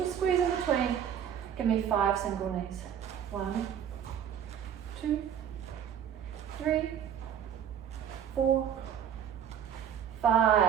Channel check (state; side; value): quieter; left; 9.0 dB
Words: squeeze in between. Give me 5 single knees. 1, 2, 3, 4,